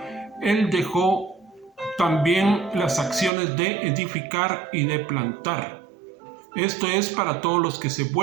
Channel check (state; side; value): drops out; left; at 3.3 s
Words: Él dejó también las acciones de edificar y de plantar. Esto es para todos los que se